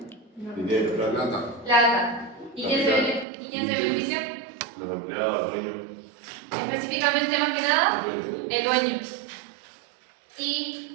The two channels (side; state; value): left; drops out; at 3.2 s